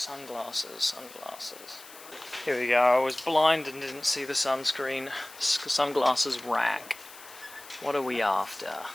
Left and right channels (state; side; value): noise; left; hiss, 18 dB below the sound